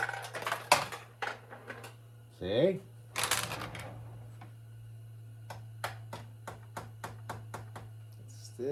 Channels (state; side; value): identical; both; correlation 1.00